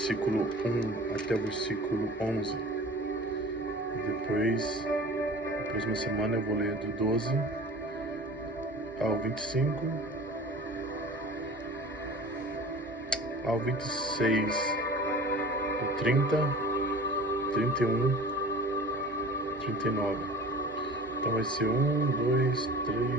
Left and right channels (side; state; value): both; normal; correlation 0.40